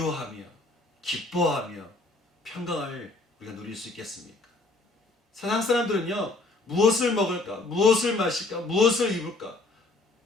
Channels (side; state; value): right; quieter; 3.2 dB